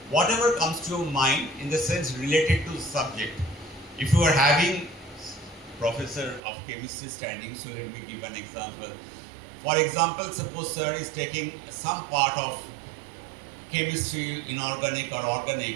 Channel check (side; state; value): left; drops out; at 6.4 s